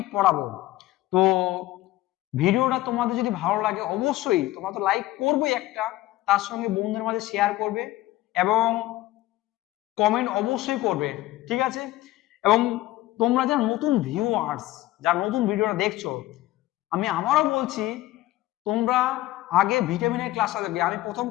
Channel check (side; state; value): right; quieter; 16.4 dB